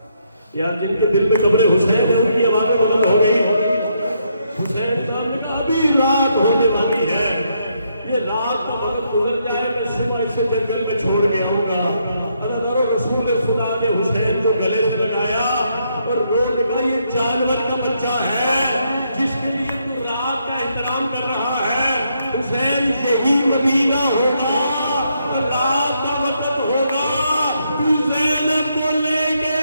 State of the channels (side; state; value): both; inverted; correlation -0.76